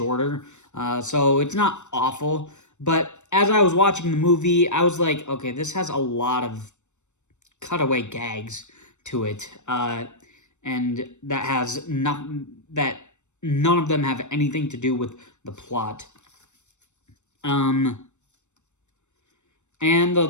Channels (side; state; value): right; late; 0.84 ms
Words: so it's not awful. But as I was watching the movie, I was like, okay, this has a lot of cutaway gags to it, and that none of them have anything to do with the plot. And